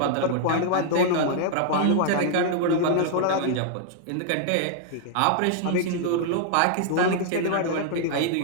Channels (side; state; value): both; different; correlation -0.01